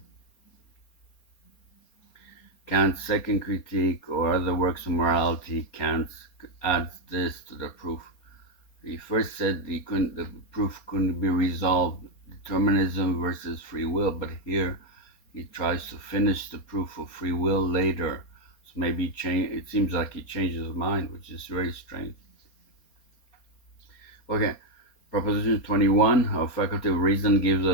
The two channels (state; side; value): late; right; 4.3 ms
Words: Kant's second critique or other works of morality, Kant adds this to the proof. He first said the proof couldn't be resolved, determinism versus free will, but here he tries to finish the proof of free will later. So maybe it seems like he changes his mind, which is very strange. Okay, Proposition 21, our faculty of reason gives